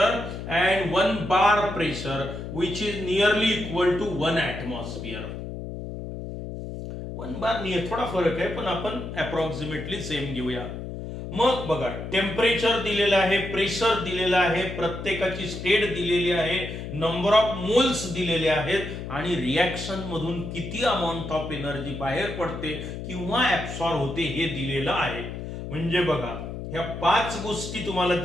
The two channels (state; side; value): noise; left; hum, 8 dB below the sound